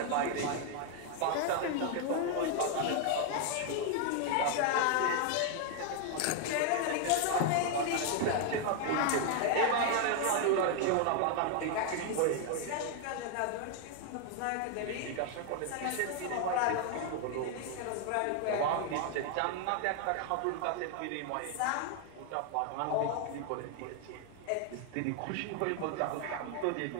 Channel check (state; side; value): different; both; correlation 0.00